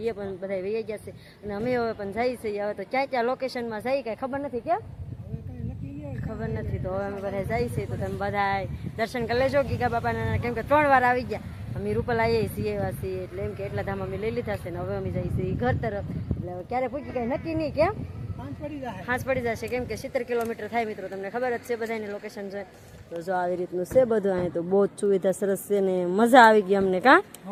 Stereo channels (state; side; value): identical; both; correlation 1.00